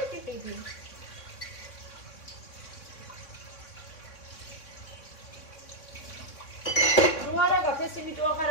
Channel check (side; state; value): right; late; 3.6 ms